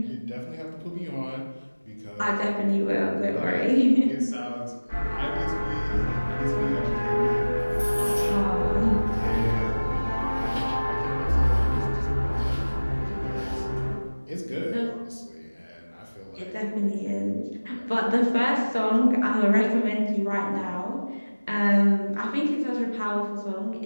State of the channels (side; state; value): both; inverted; correlation -1.00